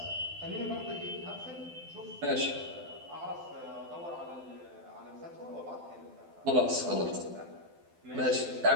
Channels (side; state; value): left; late; 12 ms